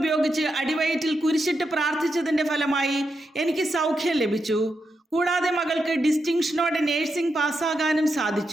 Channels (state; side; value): normal; both; correlation 0.85